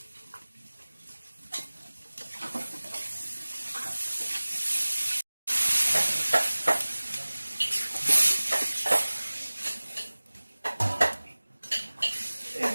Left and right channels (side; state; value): both; inverted; correlation -1.00